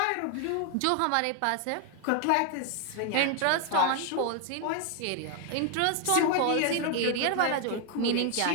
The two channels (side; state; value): both; different; correlation 0.00